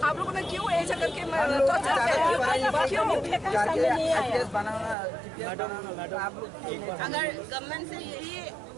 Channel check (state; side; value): drops out; left; at 5.0 s